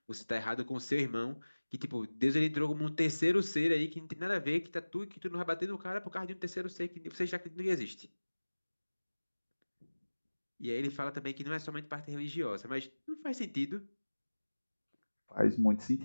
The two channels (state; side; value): inverted; both; correlation -1.00